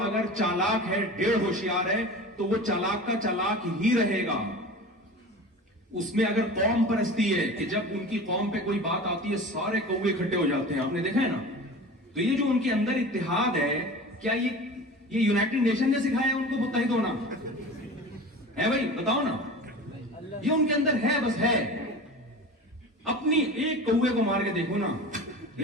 اگر چالاک ہے، ڈیڑھ ہوشیار ہے، تو وہ چالاک کا چالاک ہی رہے گا. اس میں اگر قوم پرستی ہے کہ جب ان کی قوم پہ کوئی بات آتی ہے سارے کوے اکٹھے ہو جاتے ہیں، آپ نے دیکھا ہے نا، تو یہ جو ان کے اندر اتحاد ہے، کیا یہ یونائٹڈ نیشن نے سکھایا ان کو متحد ہونا ہے؟ بھائی بتاؤ نا، یہ ان کے اندر ہے، بس ہے. اپنی ایک کوے کو مار کے دیکھو نا.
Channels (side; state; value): both; normal; correlation 0.35